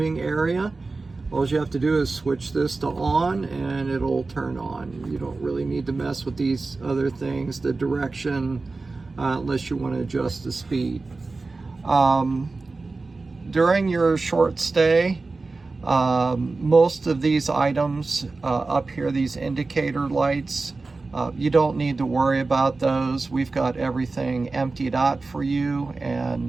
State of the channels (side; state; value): left; quieter; 3.7 dB